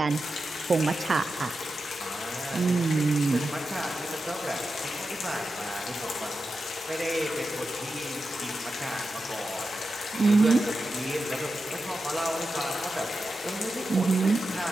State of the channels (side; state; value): both; normal; correlation 0.90